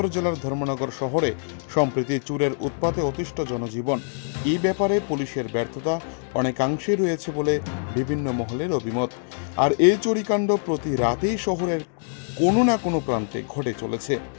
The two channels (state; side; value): silent; right; digital silence